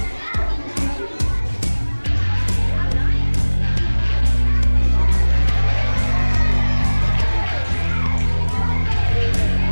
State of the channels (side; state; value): both; inverted; correlation -1.00